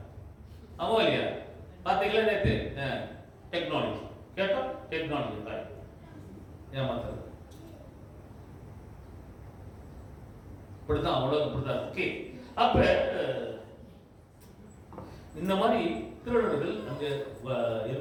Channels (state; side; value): identical; both; correlation 1.00